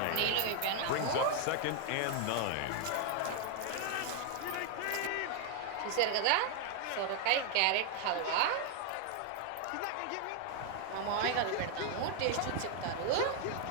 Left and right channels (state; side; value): different; both; correlation 0.00